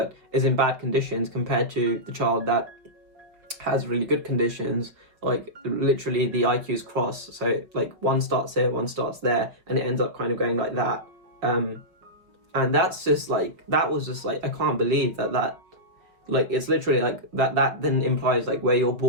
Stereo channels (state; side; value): late; left; 5.3 ms